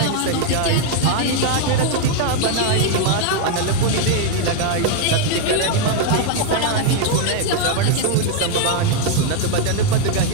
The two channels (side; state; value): both; different; correlation 0.00